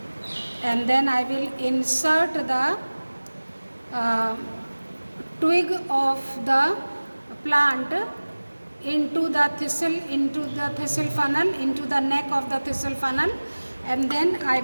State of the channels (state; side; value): inverted; both; correlation -1.00